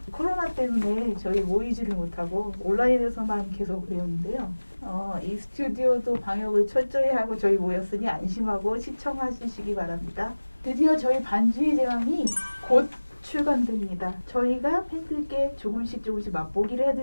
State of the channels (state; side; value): inverted; both; correlation -1.00